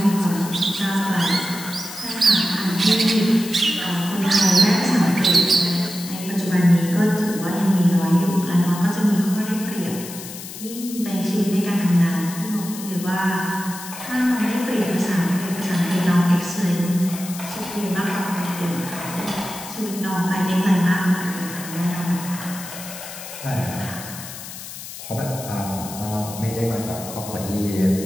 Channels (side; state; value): left; noise; hiss, 12 dB below the sound